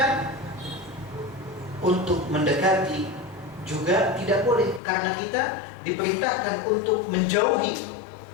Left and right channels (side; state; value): right; drops out; at 4.8 s